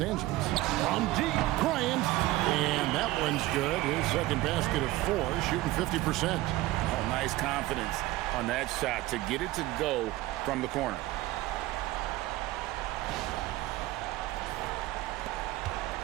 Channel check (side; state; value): left; quieter; 17.5 dB